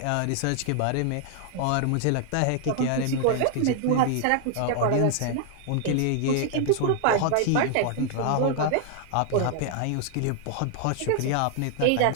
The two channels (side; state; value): both; different; correlation 0.00